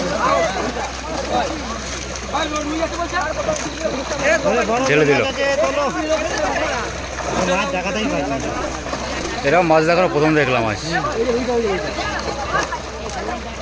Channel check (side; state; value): both; identical; correlation 1.00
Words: ঢেলে দিল। এরকম মাছ দেখানো প্রথম দেখলাম আজ।